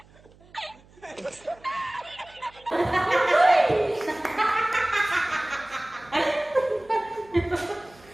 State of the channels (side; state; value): right; noise; hum, 27 dB below the sound